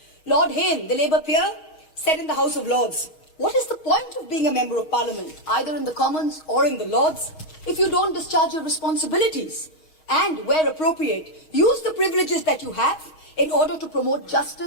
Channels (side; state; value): right; late; 6.3 ms